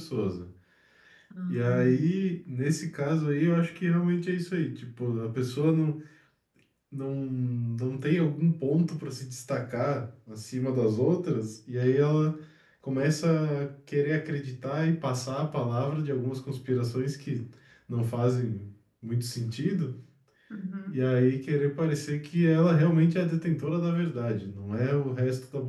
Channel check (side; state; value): both; identical; correlation 1.00